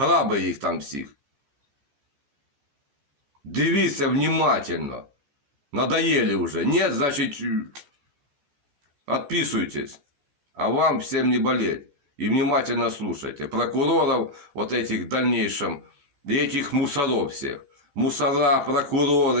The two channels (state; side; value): late; left; 14 ms